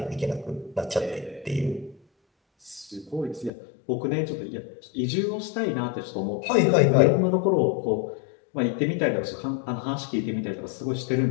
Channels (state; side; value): drops out; right; at 3.5 s